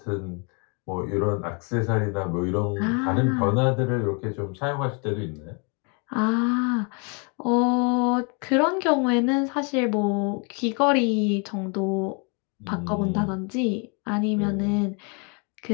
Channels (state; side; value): quieter; right; 34.5 dB